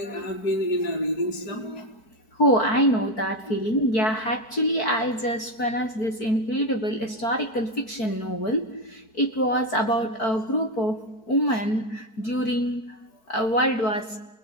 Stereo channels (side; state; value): right; late; 4.6 ms